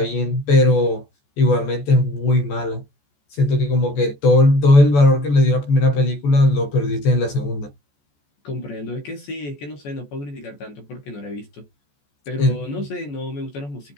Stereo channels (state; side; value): late; right; 14 ms